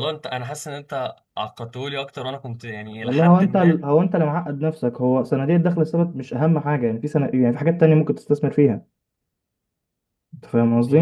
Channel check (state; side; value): identical; both; correlation 1.00